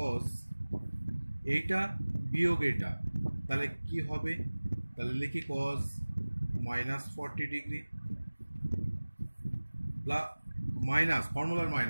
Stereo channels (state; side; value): inverted; both; correlation -1.00